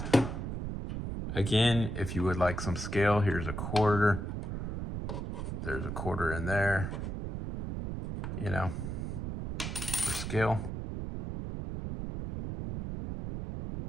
Again, if you would like some scale, here's a quarter. There's a quarter in there, you know, for scale.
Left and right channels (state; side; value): noise; right; rumble, 4 dB below the sound